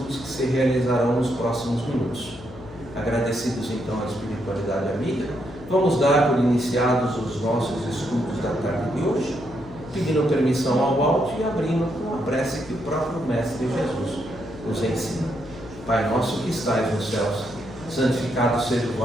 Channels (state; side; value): noise; left; hum, 16 dB below the sound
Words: que se realizarão nos próximos minutos. Agradecidos então à Espiritualidade Amiga, vamos dar por iniciados os nossos estudos da tarde de hoje, pedindo permissão ao alto e abrindo com a prece que o próprio Mestre Jesus nos ensina. Pai nosso que estais nos céus, santificado seja o